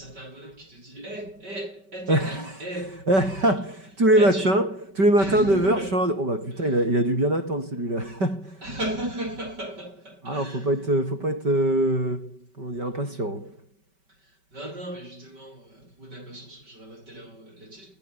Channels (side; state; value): left; late; 5.2 ms